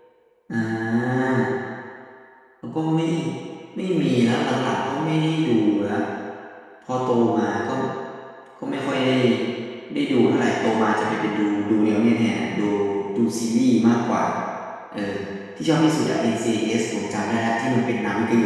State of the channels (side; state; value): both; identical; correlation 1.00